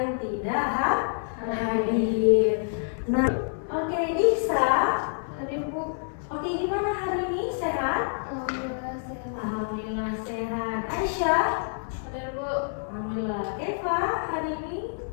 tidak hadir. Nah, oke, Nisa, hadir bu. Oke, gimana hari ini? Sehat? Alhamdulillah sehat. Aisyah, hadir bu. Alhamdulillah. Eva, hari ini?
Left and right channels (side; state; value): right; silent; 60 dB below the other